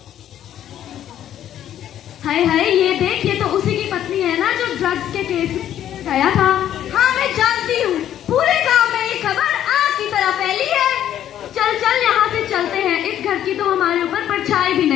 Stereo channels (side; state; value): right; quieter; 11.0 dB